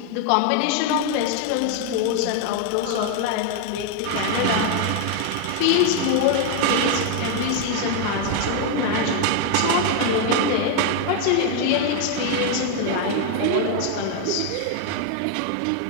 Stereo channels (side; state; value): both; different; correlation 0.01